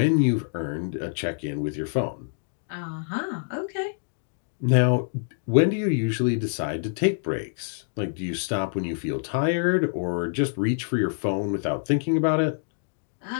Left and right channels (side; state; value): right; silent; digital silence